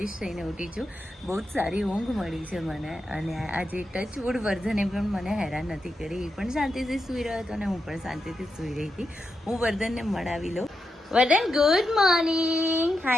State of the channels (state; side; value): normal; both; correlation 0.87